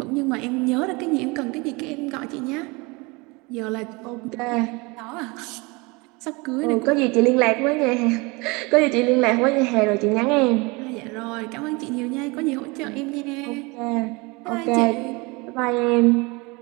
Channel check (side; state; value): left; quieter; 26.4 dB